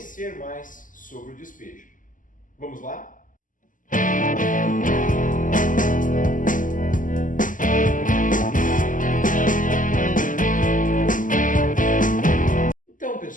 mais sobre o despejo. Vamos lá? Então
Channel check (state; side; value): late; right; 0.38 ms